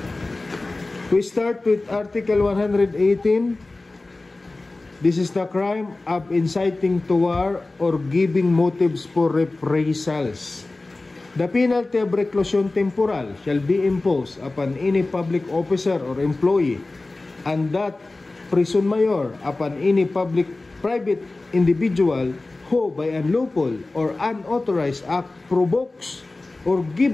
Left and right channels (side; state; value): right; quieter; 3.2 dB